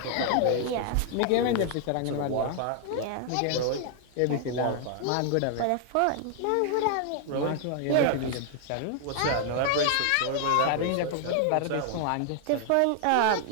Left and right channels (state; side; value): different; both; correlation 0.00